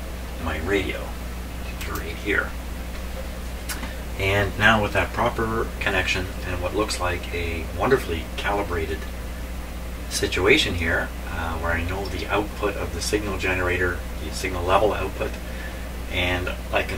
radio, right here. And now with that proper connection and what looks like a wonderfully calibrated situation here, where I know the output of the signal generator, the signal level output, and I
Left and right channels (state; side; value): identical; both; correlation 1.00